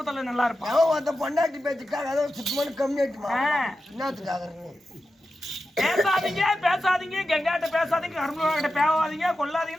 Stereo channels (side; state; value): both; normal; correlation 0.91